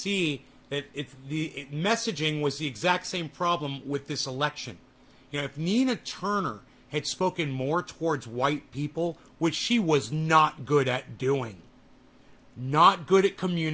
that messaging was the exact same problem with this election. You know, if Nina Turner had spoken more towards white people, which she was not good at doing, not good at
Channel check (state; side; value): identical; both; correlation 1.00